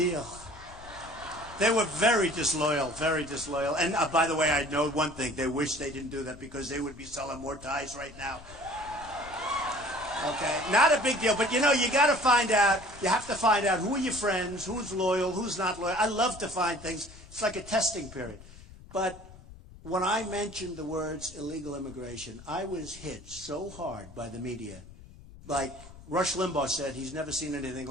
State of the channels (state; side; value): noise; left; rumble, 18 dB below the sound